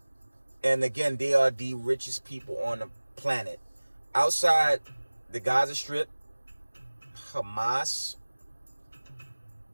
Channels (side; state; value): both; inverted; correlation -1.00